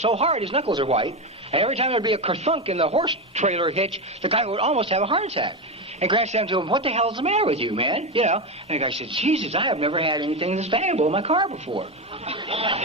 his knuckles are white, and every time there'd be a kerthunk in the horse trailer hitch, the guy would almost have a heart attack. And Grant said to him, what the hell's the matter with you, man? You know, and the guy said, Jesus, I have never had anything this valuable in my car before.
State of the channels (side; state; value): both; normal; correlation 0.15